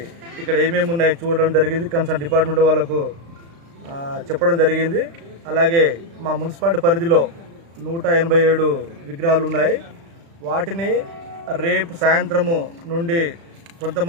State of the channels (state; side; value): late; left; 36 ms